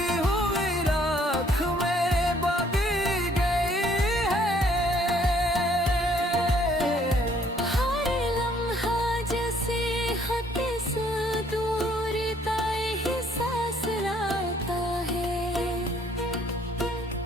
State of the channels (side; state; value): both; normal; correlation 0.63